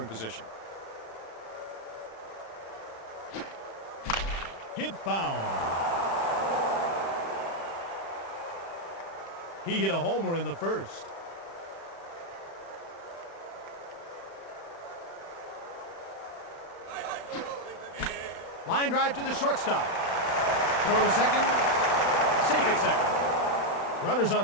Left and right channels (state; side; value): late; right; 36 ms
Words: position. Hit foul. He hit a homer in the first. Line drive to the shortstop. Throw to second. Safe at second. Runners